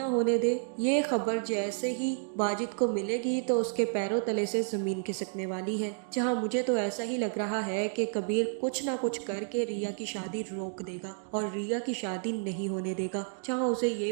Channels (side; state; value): left; silent; 56 dB below the other